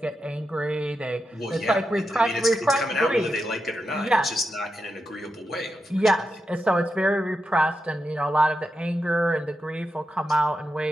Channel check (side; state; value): both; normal; correlation 0.87